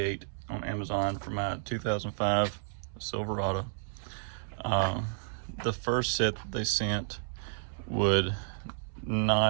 on Amazon for my 2005 Silverado. The first set that they sent would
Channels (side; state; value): left; silent; digital silence